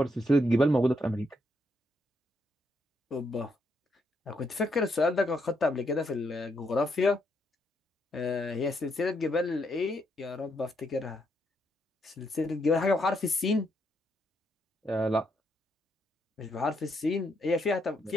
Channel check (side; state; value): both; normal; correlation 0.77